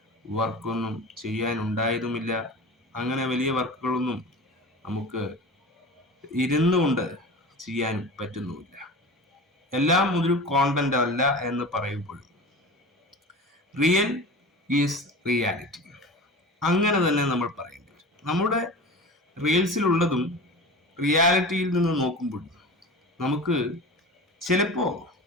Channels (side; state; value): both; normal; correlation 0.33